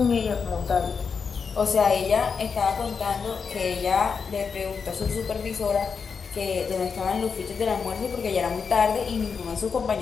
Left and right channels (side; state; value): right; quieter; 5.7 dB